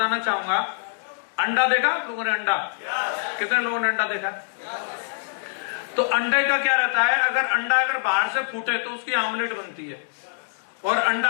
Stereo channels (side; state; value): right; silent; digital silence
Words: चाहूंगा, अंडा देखा आप लोगों ने? अंडा कितने लोगों ने अंडा देखा? तो अंडे का क्या रहता है, अगर अंडा अगर बाहर से फूटे तो उसकी आमलेट बनती है, और अंडा